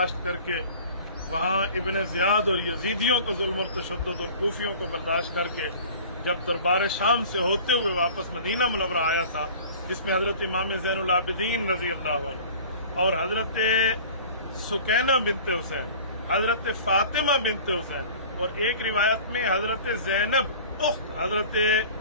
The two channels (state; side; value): inverted; both; correlation -0.43